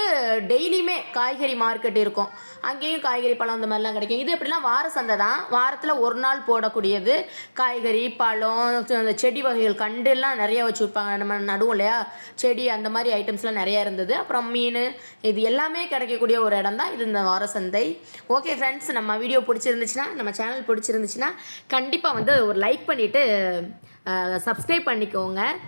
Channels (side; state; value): both; inverted; correlation -1.00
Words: டெய்லியுமே காய்கறி மார்க்கெட் இருக்கும், அங்கேயும் காய்கறி பழம் இந்த மாதிரிலாம் கிடைக்கும். இது எப்படிலாம் வார சந்தை தான், வாரத்தில் ஒரு நாள் போடக்கூடியது. காய்கறி பழம், அந்த செடி வகைகள், கண்டுலாம் நிறைய வச்சு விற்பாங்க, நம்ம நடுவோம் இல்லையா செடி, அந்த மாதிரி ஐட்டம்ஸ்லாம் நிறையா இருந்தது. அப்புறம் மீன், இது எல்லாமே கிடைக்கக்கூடிய ஒரு இடம் தான் இது, இந்த வார சந்தை. ஓகே ஃப்ரெண்ட்ஸ், நம்ம வீடியோ பிடிச்சிருந்துச்சுன்னா, நம்ம சேனல் பிடிச்சிருந்துச்சுன்னா கண்டிப்பாக வந்து ஒரு லைக் பண்ணிவிட்டு சப்ஸ்கிரைப் பண்ணிக்கோங்க.